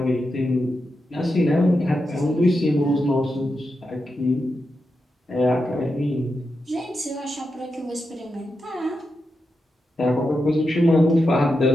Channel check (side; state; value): both; normal; correlation 0.88